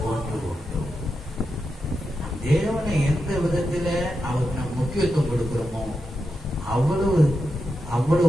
ஒன்று உண்டு. தேவனை எந்த விதத்துல அவருக்கு நாம் முக்கியத்துவம் கொடுக்கிறோமோ அவ்வளவு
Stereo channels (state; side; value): normal; both; correlation 0.88